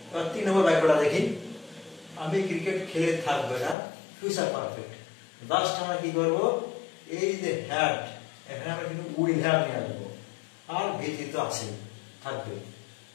এবার 3 নম্বর বাক্যটা দেখি, আমি ক্রিকেট খেলে থাকবো, এটা ফিউচার পারফেক্ট। লাস্ট আমরা কি করবো, এই যে হ্যাড, এখানে আমরা কিন্তু উইল হ্যাভ নিয়ে আসবো, আর ভিথিত আছে থাকবে,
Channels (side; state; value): right; drops out; at 3.8 s